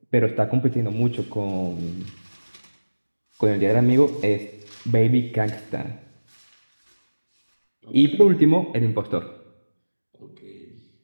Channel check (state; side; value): inverted; both; correlation -1.00